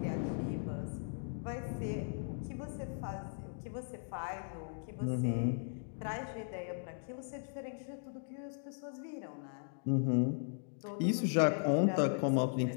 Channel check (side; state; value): right; silent; digital silence